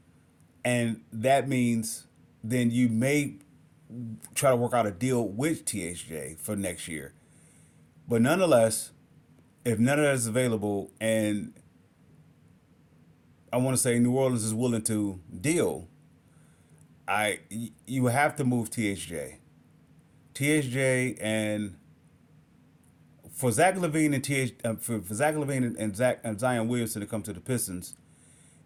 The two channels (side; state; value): both; identical; correlation 1.00